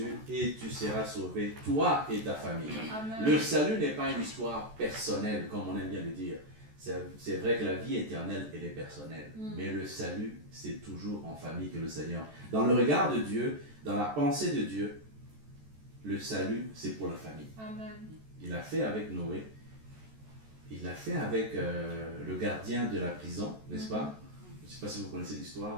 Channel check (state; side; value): late; left; 14 ms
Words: et tu seras sauvé, toi et ta famille. Amen. Le salut n'est pas une histoire personnelle, comme on aime bien le dire. C'est vrai que la vie éternelle, elle est personnelle. Mais le salut, c'est toujours en famille que le Seigneur. Dans le regard de Dieu, dans la pensée de Dieu, le salut, c'est pour la famille. Amen. Il l'a fait avec Noé. Il l'a fait avec le gardien de la prison, n'est-ce pas? Je ne sais pas si vous connaissez